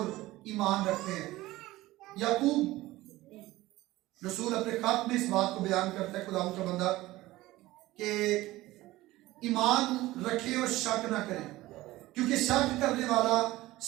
ایمان رکھتے ہیں۔ یعقوب رسول اپنے خط میں اس بات کو بیان کرتا ہے، خدا کا بندہ، کہ ایمان رکھے اور شک نہ کریں، کیونکہ شک کرنے والا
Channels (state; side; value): quieter; left; 17.7 dB